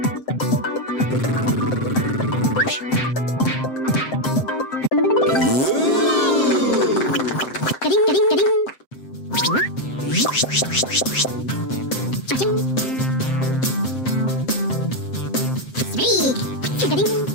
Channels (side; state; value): right; late; 7.7 ms